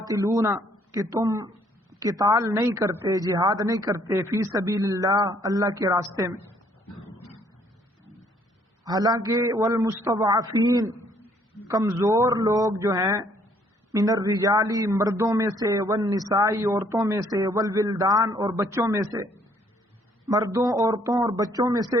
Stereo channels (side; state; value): both; normal; correlation 0.64